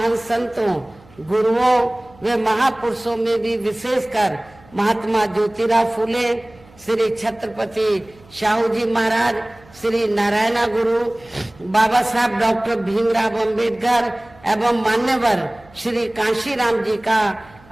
संतों, गुरुओं व महापुरुषों में भी विशेषकर महात्मा ज्योतिराव फूले, श्री छत्रपति शाहू जी महाराज, श्री नारायण गुरु, बाबा साहब डॉक्टर भीमराव अंबेडकर एवं मान्यवर श्री कांशीराम जी का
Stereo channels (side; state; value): right; noise; hum, 26 dB below the sound